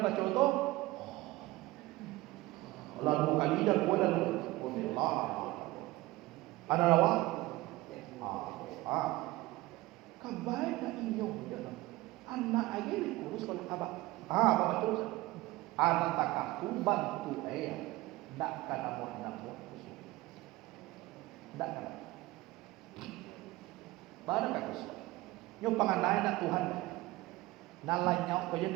baca tu. Lalu kali dah buat lalu. Allah. Ada lawa. Kabai nak inyong dia. Anak lagi ni kurus kalau abah. Abah terus. Anak takah tu bantu ayah. Tak kena buat kusuk. Tak kena. Baru kata kusuk. Nyo panganai nak Tuhan. Nalanya kau yang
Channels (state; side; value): quieter; left; 19.2 dB